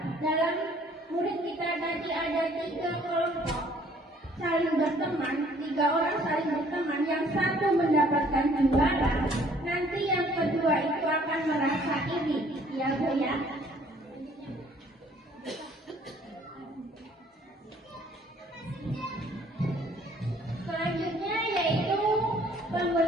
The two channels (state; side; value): normal; both; correlation 0.59